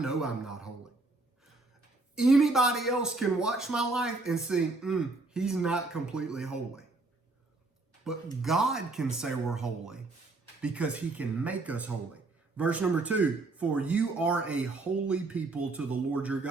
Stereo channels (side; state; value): left; quieter; 3.3 dB